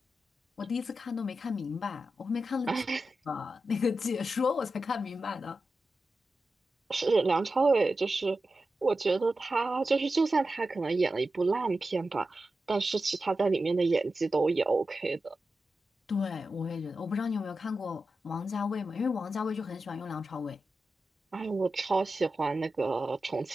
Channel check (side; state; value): both; normal; correlation 0.92